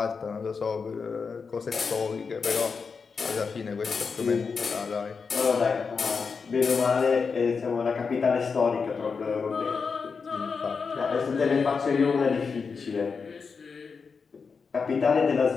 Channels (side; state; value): right; quieter; 5.3 dB